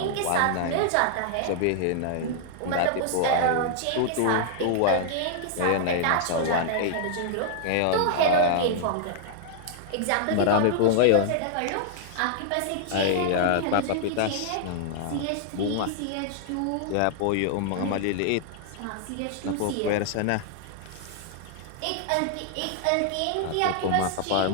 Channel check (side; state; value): both; different; correlation -0.01